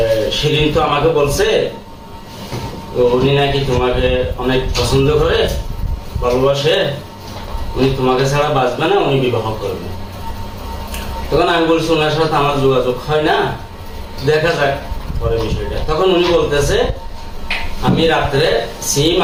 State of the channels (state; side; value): identical; both; correlation 1.00